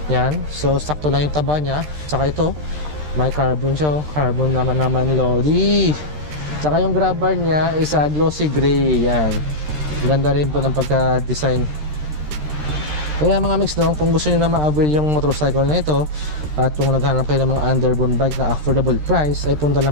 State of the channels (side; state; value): left; late; 13 ms